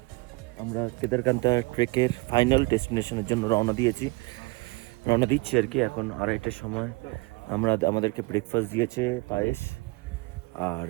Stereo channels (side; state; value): left; quieter; 25.1 dB